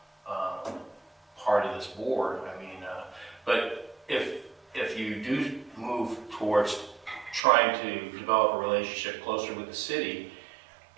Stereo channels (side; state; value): left; drops out; at 7.4 s